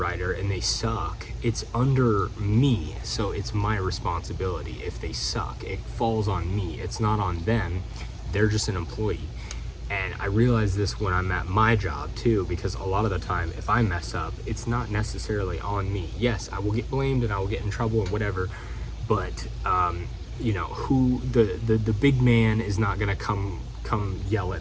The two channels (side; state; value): both; identical; correlation 1.00